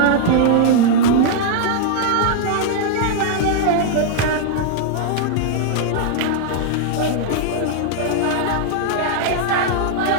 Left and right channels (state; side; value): different; both; correlation -0.01